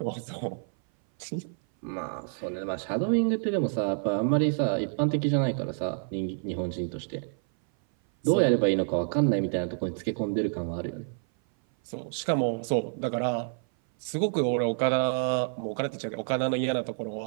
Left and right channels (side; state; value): left; silent; 57 dB below the other